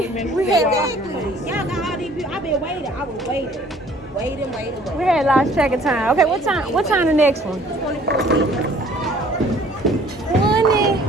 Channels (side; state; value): both; normal; correlation 0.55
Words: Y'all got all these people. I've been waiting. I was waiting. We had lost track of time. Okay, what time? What time the next one? 24 minutes.